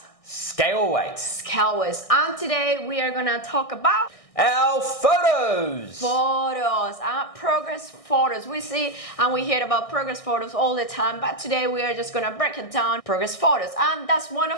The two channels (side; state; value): right; late; 1.6 ms